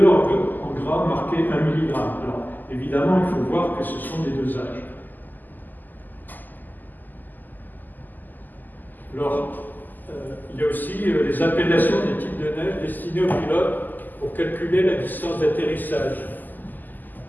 en gras marqué 1 mg. Alors, évidemment, il faut voir que ce sont des dosages. Alors, il y a aussi les appellations des types de neige destinées aux pilotes pour calculer la distance d'atterrissage.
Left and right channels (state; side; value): late; right; 0.086 ms